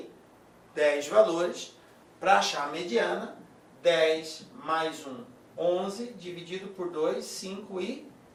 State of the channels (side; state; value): both; identical; correlation 1.00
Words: 10 valores, para achar a mediana, 10 mais 1, 11, dividido por 2,